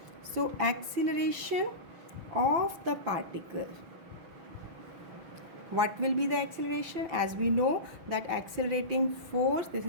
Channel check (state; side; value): late; left; 5.9 ms